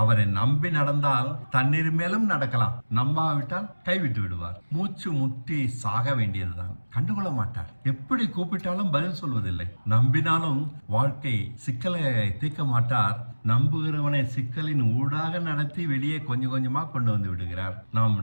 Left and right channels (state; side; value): inverted; both; correlation -1.00